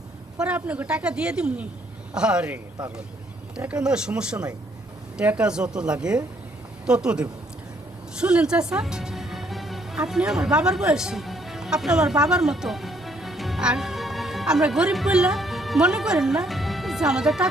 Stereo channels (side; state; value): both; normal; correlation 0.68